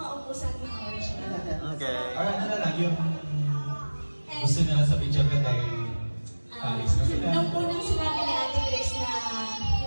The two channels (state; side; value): inverted; both; correlation -1.00